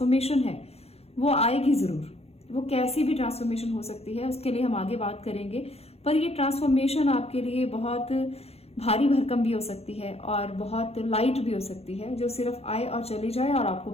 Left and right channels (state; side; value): late; right; 0.29 ms